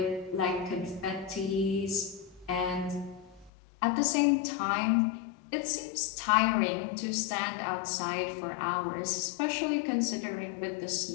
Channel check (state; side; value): drops out; right; at 3.5 s